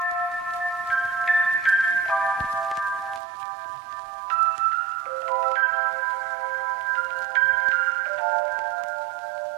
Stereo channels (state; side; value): drops out; left; at 3.2 s